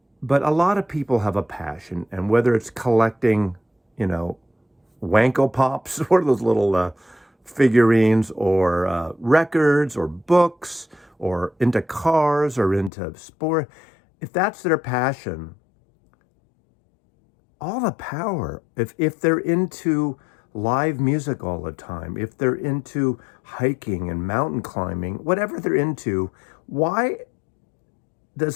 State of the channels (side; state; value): right; drops out; at 12.9 s